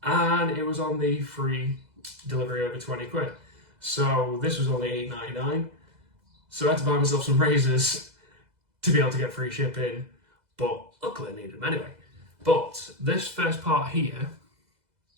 and it was on the free delivery over 20 quid. So, this was only $8.99. So, I had to buy myself some razors to be able to get free shipping, but luckily I needed them anyway. But this first part here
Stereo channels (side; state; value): left; late; 2.0 ms